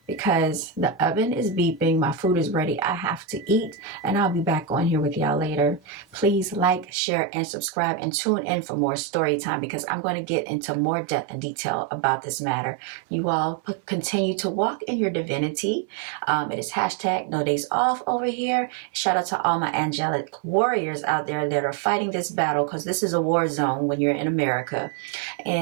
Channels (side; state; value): left; drops out; at 7.0 s